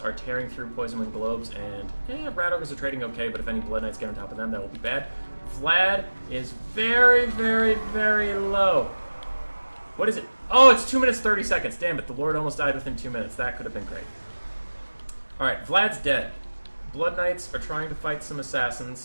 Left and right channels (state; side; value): inverted; both; correlation -1.00